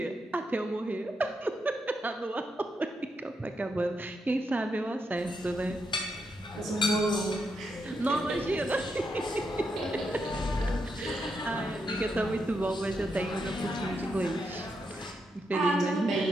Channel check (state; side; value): normal; both; correlation 0.82